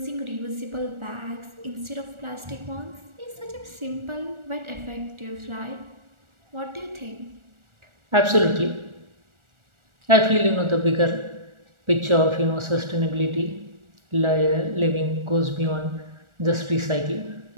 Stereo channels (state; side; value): late; left; 1.4 ms